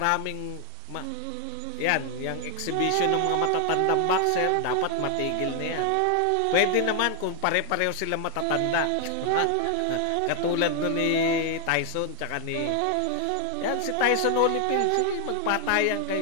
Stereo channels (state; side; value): different; both; correlation 0.00